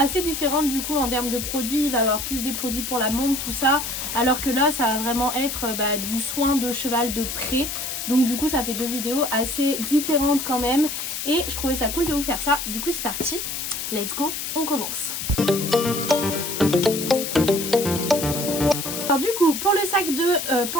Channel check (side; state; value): left; noise; hiss, 4 dB below the sound